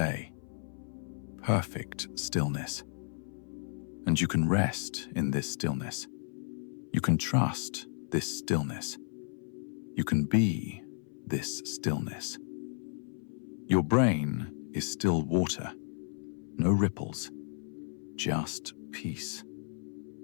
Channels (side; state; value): right; silent; 55 dB below the other